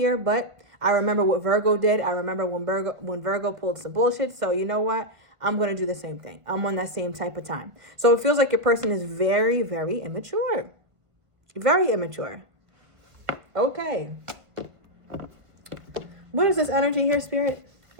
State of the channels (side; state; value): left; late; 1.6 ms